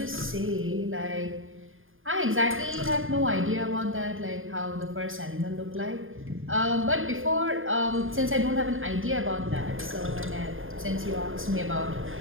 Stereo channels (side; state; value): left; late; 0.59 ms